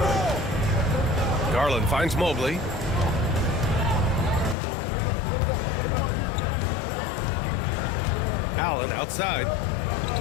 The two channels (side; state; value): right; drops out; at 4.5 s